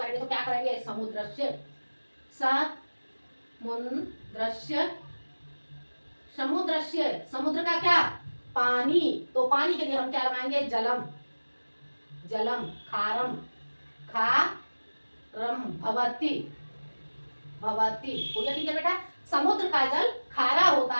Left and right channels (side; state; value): both; inverted; correlation -1.00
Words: तो क्या करेंगे? समुद्रस्य, समुद्र का क्या? पानी। तो पानी के लिए हम क्या लगाएंगे? जलम, खारम, भवति। हो गया ठीक है बेटा? समुद्र का जल खारा होता